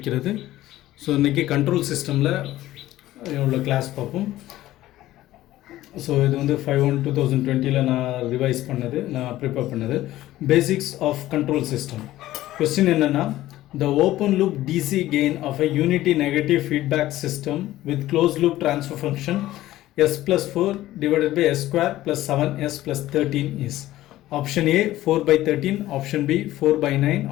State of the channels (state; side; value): quieter; right; 15.2 dB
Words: ஸோ இன்றைக்கி கண்ட்ரோல் சிஸ்டமில் உள்ள கிளாஸ் பார்ப்போம். ஸோ இது வந்து 5/1/2020 நான் ரிவைஸ் பண்ணது, நான் ப்ரிப்பேர் பண்ணது. Basics of control system. Question என்னென்னா, the open loop DC gain of a unity negative feedback system with closed loop transfer function s plus 4 divided by s square plus 7s plus 13 is option A 4 by 13, option B 4 by 9,